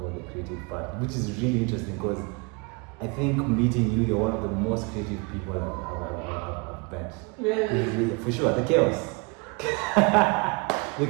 the creative part, which is really interesting because I think meeting you, you're one of the most creative people I've met. Really? For sure, the chaos. The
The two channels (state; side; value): quieter; left; 30.1 dB